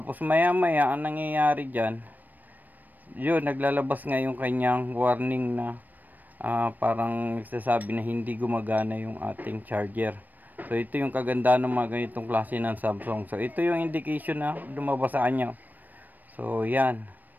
maya maya ang nangyayari dyan, yun, naglalabas nga yung kanyang warning na parang nagsasabi na hindi gumagana yung ating charger. So ito yung kagandahan ng mga ganitong klase ng Samsung. So ito yung indication na lumabas sa kanya. So yan.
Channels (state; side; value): late; left; 0.087 ms